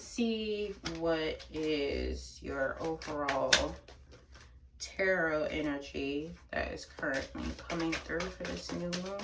see what is your overall tarot energy that is currently coming through for this new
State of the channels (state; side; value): identical; both; correlation 1.00